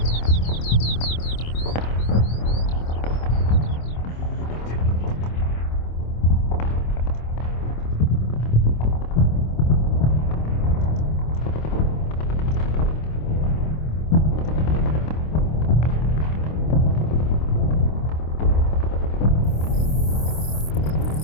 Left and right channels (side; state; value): right; late; 26 ms